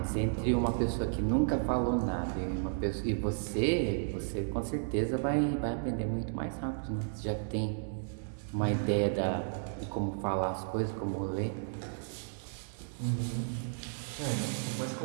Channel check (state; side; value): silent; left; digital silence